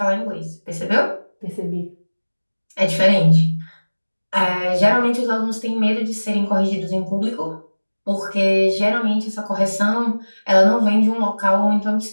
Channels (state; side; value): inverted; both; correlation -1.00